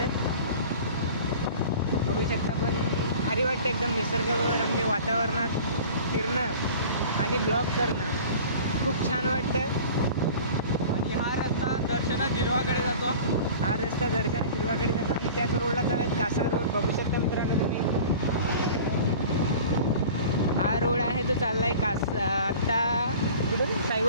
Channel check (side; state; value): both; inverted; correlation -0.42